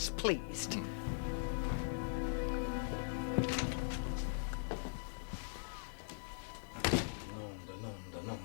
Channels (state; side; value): silent; right; digital silence